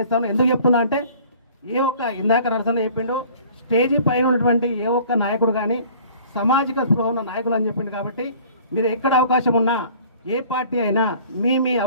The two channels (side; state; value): both; inverted; correlation -0.50